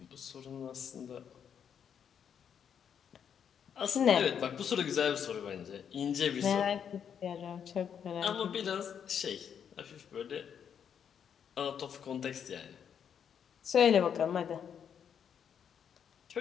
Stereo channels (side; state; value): right; quieter; 8.0 dB